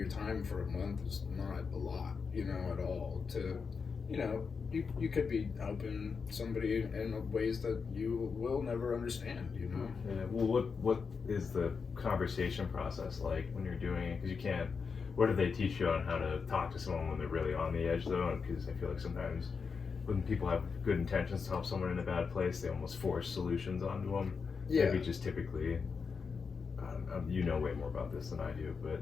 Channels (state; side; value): quieter; right; 5.4 dB